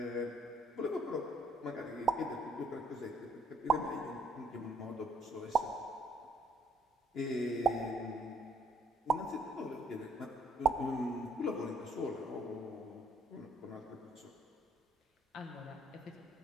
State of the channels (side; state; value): both; normal; correlation 0.65